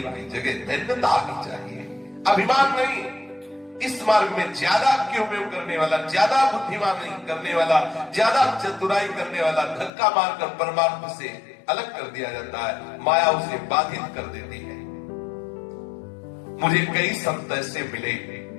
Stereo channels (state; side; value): drops out; right; at 9.9 s